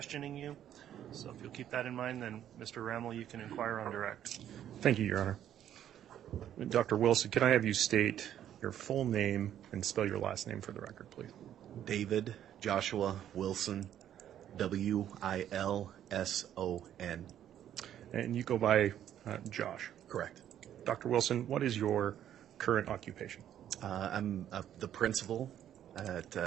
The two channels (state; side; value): quieter; left; 10.7 dB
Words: you. So if you'll keep that in mind, then Mr. Rammel, you can inquire on direct. Thank you, Your Honor. Dr. Wilson, can I have you state your full name and spell your last name for the record, please? David Joshua Wilson, Wilson. And you go by Josh. Correct. Dr. Wilson, what is your current occupation? I'm the principal